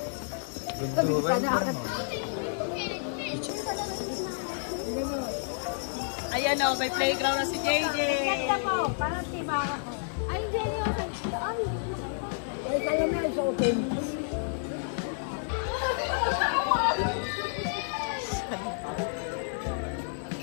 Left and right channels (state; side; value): silent; right; digital silence